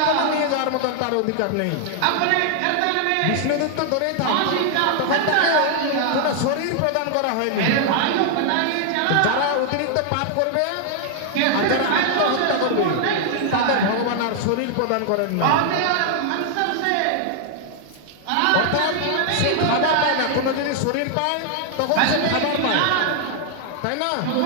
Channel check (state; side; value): different; both; correlation 0.00